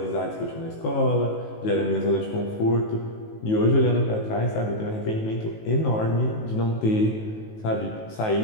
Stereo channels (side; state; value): right; late; 19 ms